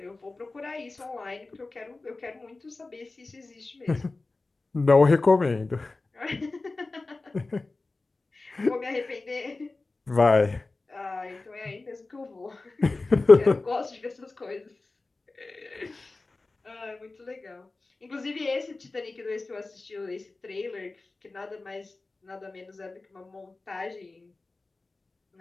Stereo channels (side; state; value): right; quieter; 3.4 dB